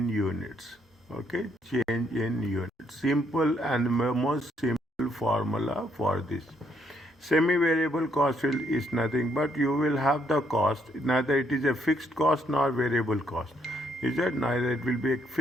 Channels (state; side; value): normal; both; correlation 0.72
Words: units. Okay, change in units. Simple and most simple formula for this. Semi-variable cost is nothing but you will have the cost, neither it is a fixed cost nor variable cost. Is that neither it will be a